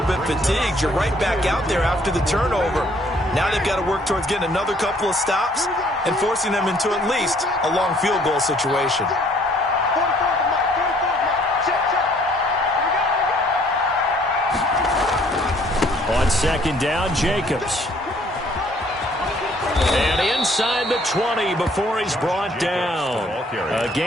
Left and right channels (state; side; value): normal; both; correlation 0.61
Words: bit fatigued. You're right back out there after the turnover. Now they've got to work towards getting another couple of stops and forcing them into at least a long field goal situation. On second down, Jacobs. And inside the 20 before he's brought down. A